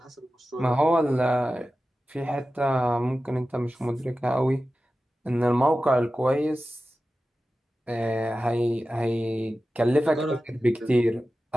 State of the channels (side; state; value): both; normal; correlation 0.94